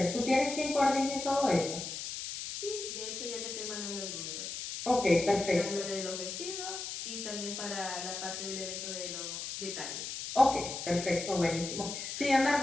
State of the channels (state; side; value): noise; left; hiss, 6 dB below the sound